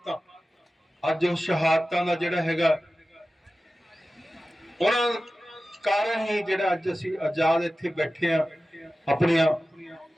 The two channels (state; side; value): normal; both; correlation 0.95